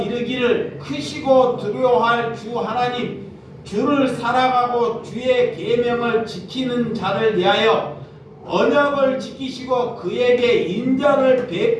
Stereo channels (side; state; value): both; identical; correlation 1.00